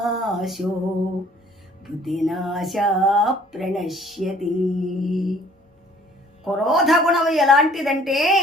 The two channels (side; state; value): both; normal; correlation 0.56